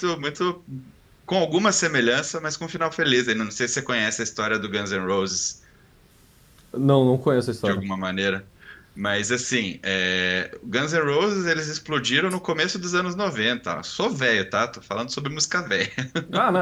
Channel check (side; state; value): both; identical; correlation 1.00